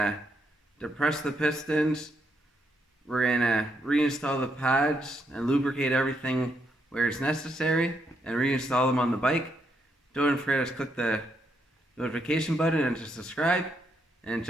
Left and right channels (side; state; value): both; normal; correlation 0.78